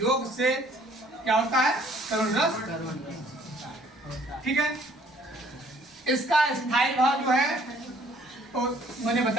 से क्या होता है? करुण रस। ठीक है, इसका स्थायी भाव जो है तो मैंने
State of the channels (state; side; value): normal; both; correlation 0.59